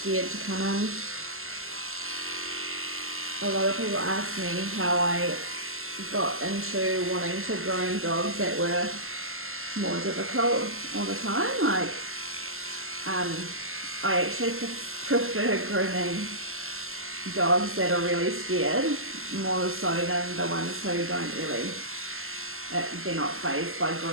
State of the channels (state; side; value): late; left; 0.62 ms